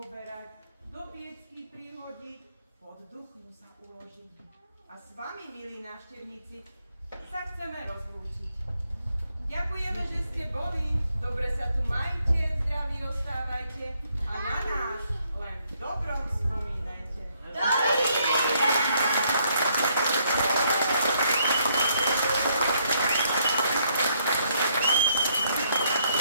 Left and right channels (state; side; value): inverted; both; correlation -0.71